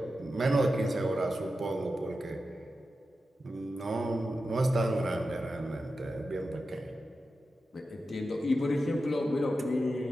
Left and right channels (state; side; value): normal; both; correlation 0.91